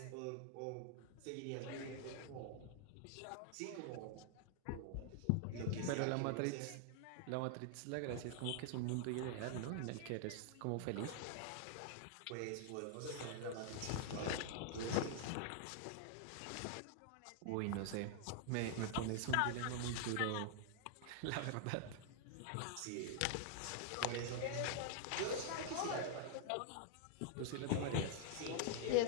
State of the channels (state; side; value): different; both; correlation 0.00